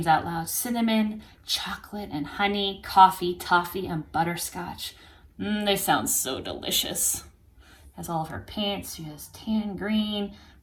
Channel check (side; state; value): both; identical; correlation 1.00